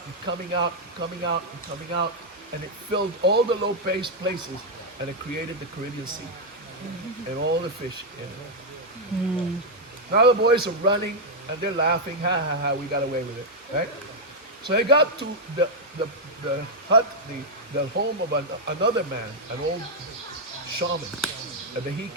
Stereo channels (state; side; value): normal; both; correlation -0.01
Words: and coming out and coming out and coming out, and it filled all the low places, and it created the Caribbean Sea and all the fish in it. Now the boys are running and they're laughing, ha ha ha, we got away with it, right? So they got to the hut, the home of another man, an old shaman, a